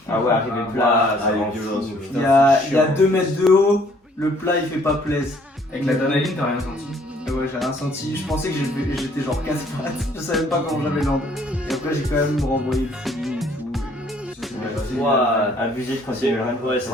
Ah ouais, arrivé plat, ça il est rend violent, fou. ce Il y a 2 mètres de haut. Le plat il fait pas plaise. Avec l'adrénaline, t'as rien senti? Ouais, j'ai rien senti. Je pensais que j'étais genre casse-pattes. Je savais pas comment j'avais l'angle. Et après, j'ai quand même renvoyé le feeling et tout. Et ça s'est bien passé. Ouah, abusé de continuer. Ouais,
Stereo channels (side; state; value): both; normal; correlation 0.61